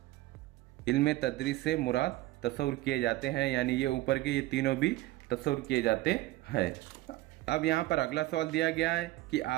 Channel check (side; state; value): left; quieter; 17.6 dB